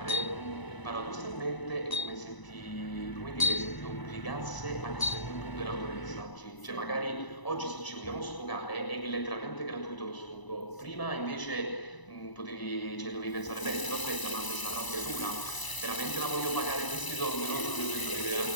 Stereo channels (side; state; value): right; late; 1.0 ms